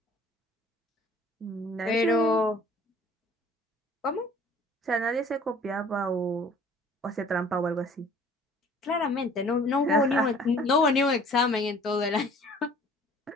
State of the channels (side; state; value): both; normal; correlation 0.51